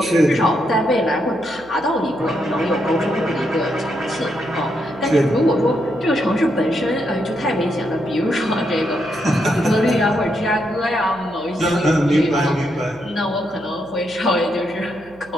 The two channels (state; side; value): noise; right; hum, 25 dB below the sound